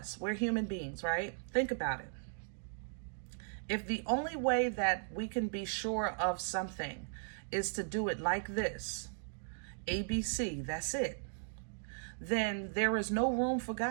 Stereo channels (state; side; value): silent; left; digital silence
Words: we're human beings, right? Think about it. If the only way that we can be sure of something is to do it like this, ABC, that's it, then there is no room for